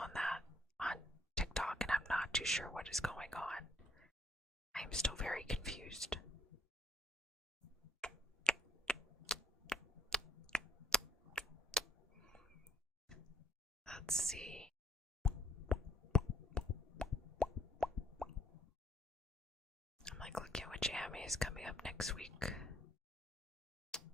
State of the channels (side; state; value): both; normal; correlation 0.66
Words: that on TikTok, and I'm not too sure what is going on. I'm still very confused. Let's see. I'm like looking at which anime is coming up next week.